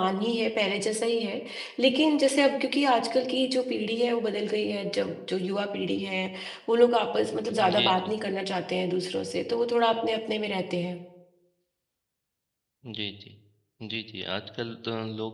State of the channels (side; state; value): both; identical; correlation 1.00